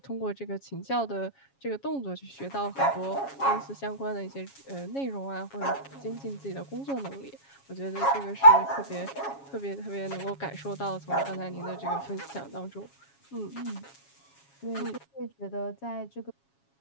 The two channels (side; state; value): right; late; 7.3 ms